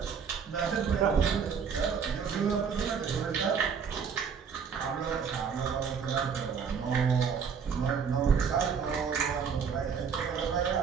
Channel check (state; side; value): quieter; left; 6.5 dB